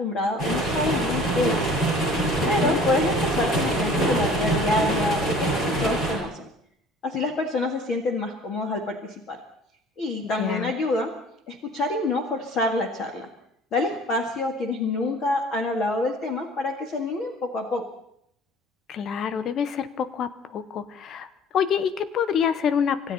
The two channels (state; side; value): normal; both; correlation 0.48